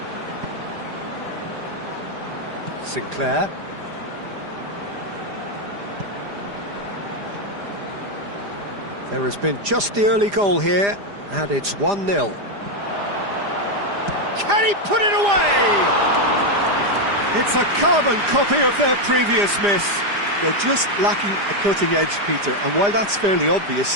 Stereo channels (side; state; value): left; late; 5.0 ms